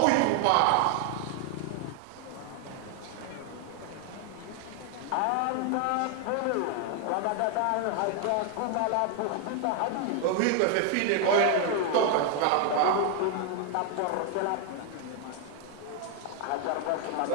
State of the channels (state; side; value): different; both; correlation 0.00